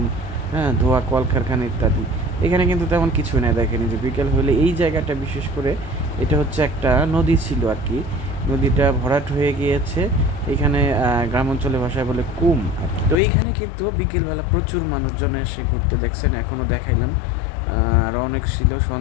হ্যাঁ, ধোঁয়া, কলকারখানা ইত্যাদি। এখানে কিন্তু তেমন কিছু নেই। দেখেন এই যে বিকেল হলে এই জায়গাটা, বিশেষ করে এটা হচ্ছে একটা নদী ছিল আর কি। নদীটা ভরাট হয়ে গিয়েছে। এখানে গ্রাম অঞ্চলের ভাষায় বলে কুম আর কি। তো এইখানে কিন্তু বিকেলবেলা প্রচুর মানুষজন এসে ঘুরতে, দেখছেন এখনও দেখাইলাম। আরও অনেক ছিল,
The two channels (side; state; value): right; drops out; at 13.2 s